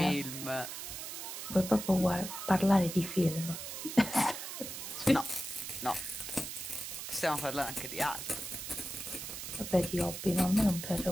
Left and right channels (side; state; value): right; noise; hiss, 7 dB below the sound